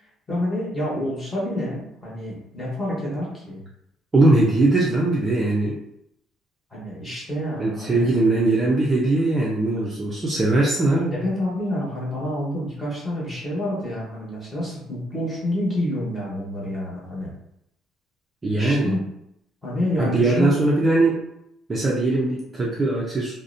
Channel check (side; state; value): both; normal; correlation 0.74